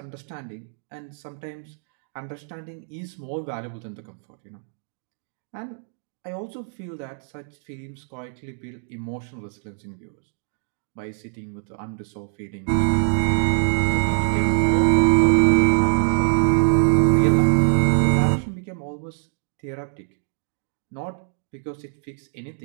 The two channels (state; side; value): silent; left; digital silence